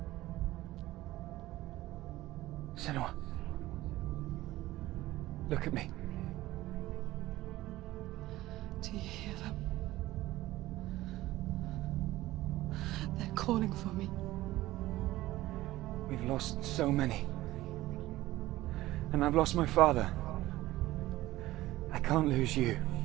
Senua. Look at me. Do you hear them? They're calling for me. We've lost so many. And I've lost my father. I can't lose you.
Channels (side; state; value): left; quieter; 16.7 dB